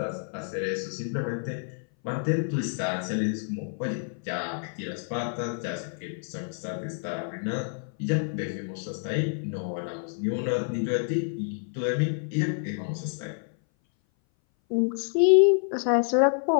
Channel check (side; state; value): right; silent; 58 dB below the other